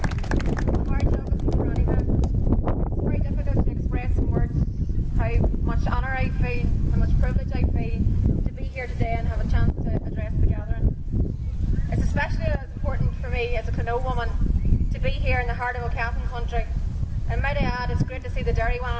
And might I add, it's great to see the dairy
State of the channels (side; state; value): both; identical; correlation 1.00